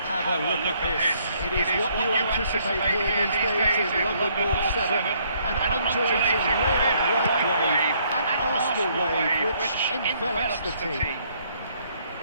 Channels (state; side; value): inverted; both; correlation -0.67